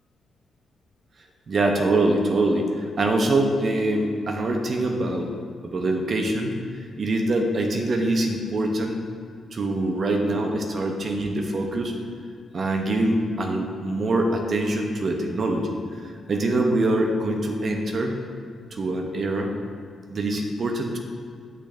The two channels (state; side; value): normal; both; correlation 0.82